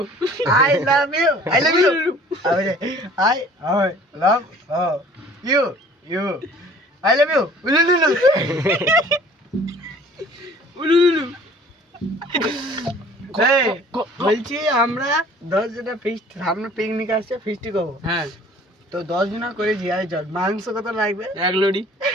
I love you I love you I love you you I love you উলুলু উলুলু। এই বলছি আমরা 10 জনের ফিস্ট, সামনে পিকনিক আসছে, ফিস্টি করবো। হ্যাঁ তো 10 জন করে জিয়াই চল। মাংস কত লাগবে?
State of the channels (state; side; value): normal; both; correlation 0.51